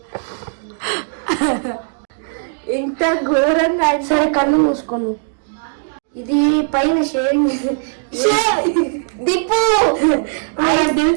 ఇంత ఘోరంగా. సరే కళ్ళు మూసుకోను. ఇది పైన షేరింగ్ దిప్పు.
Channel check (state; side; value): silent; left; digital silence